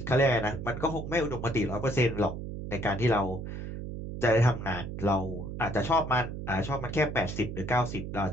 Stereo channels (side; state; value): right; noise; hum, 7 dB below the sound